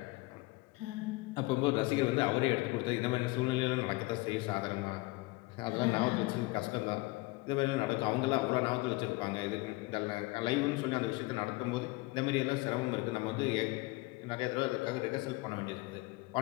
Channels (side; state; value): right; quieter; 22.2 dB